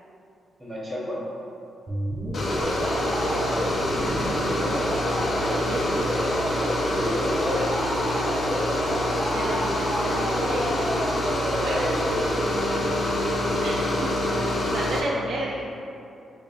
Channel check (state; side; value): normal; both; correlation 0.79